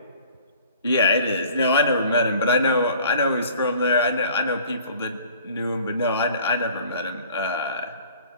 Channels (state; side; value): inverted; both; correlation -0.50